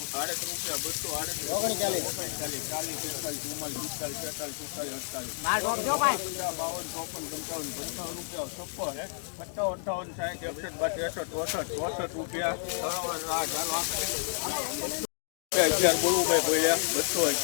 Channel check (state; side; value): silent; right; digital silence